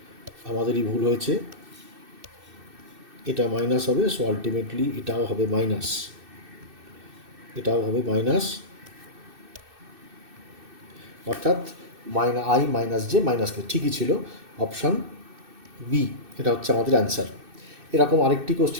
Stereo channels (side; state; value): left; late; 2.6 ms